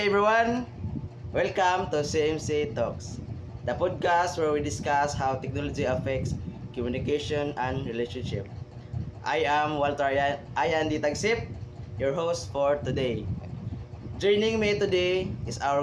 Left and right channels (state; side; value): identical; both; correlation 1.00